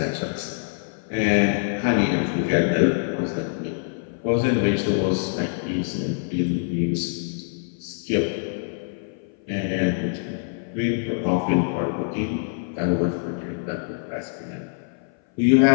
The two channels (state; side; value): silent; right; 57 dB below the other